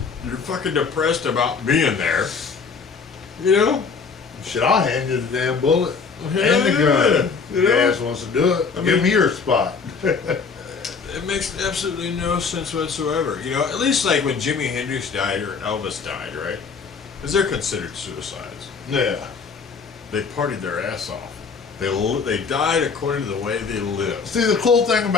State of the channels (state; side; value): quieter; right; 5.3 dB